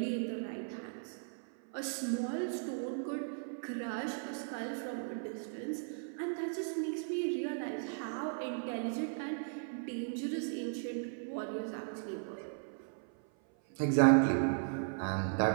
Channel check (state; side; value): silent; left; 53 dB below the other